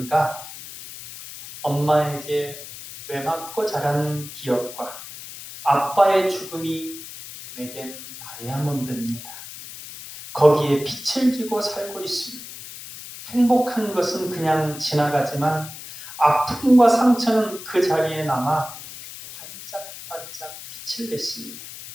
엄마에게 매맞고 자란 기억과 아빠의 죽음이 내겐 다이아몬드입니다. 거기에 빛을 지고 살고 있습니다. 행복한 것은 그냥 지나가지만 아픔과 상처는 그 자리에 남아 반짝반짝 빛을 냈습니다.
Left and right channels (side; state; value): left; noise; hiss, 13 dB below the sound